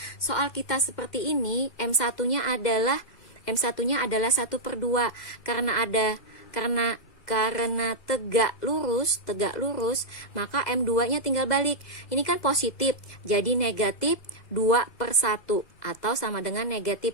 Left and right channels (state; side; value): late; right; 2.3 ms